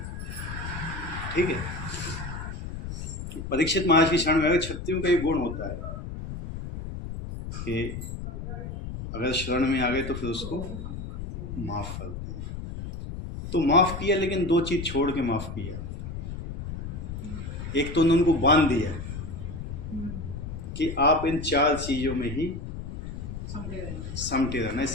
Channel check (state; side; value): noise; left; rumble, 7 dB below the sound